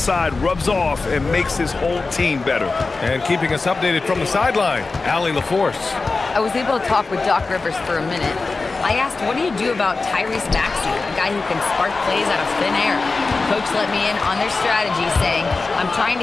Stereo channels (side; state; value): right; quieter; 3.9 dB